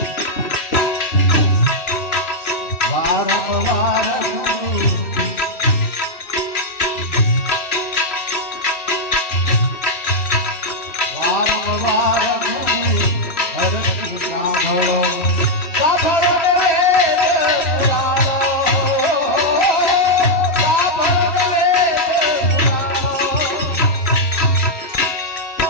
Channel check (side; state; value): right; late; 3.1 ms